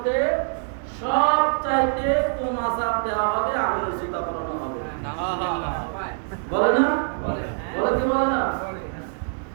সবচাইতে কম আযাব দেওয়া হবে, আগুনের জুতা পরানো হবে। বলে না? বলে কি বলে না?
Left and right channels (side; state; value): left; silent; digital silence